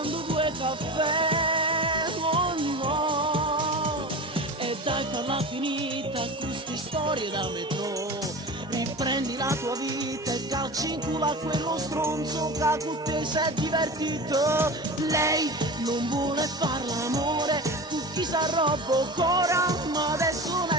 2 caffè, oh no. E dai farla finita queste storie da metro, riprendi la tua vita e calci in culo a quello stronzo che con te si è divertito. Lei non vuole far l'amore, tu chi sa roba o cora, ma adesso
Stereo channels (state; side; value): normal; both; correlation 0.31